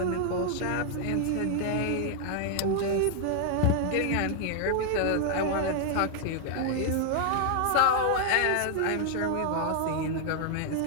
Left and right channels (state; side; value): different; both; correlation 0.00